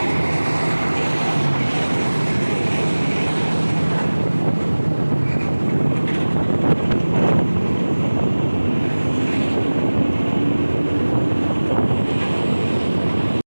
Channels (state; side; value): inverted; both; correlation -1.00